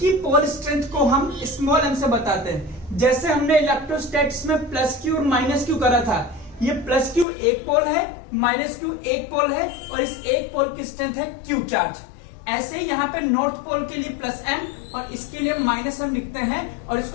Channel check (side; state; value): right; drops out; at 7.2 s